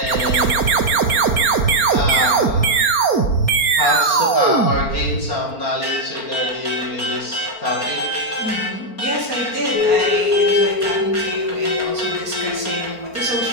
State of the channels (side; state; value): right; late; 4.3 ms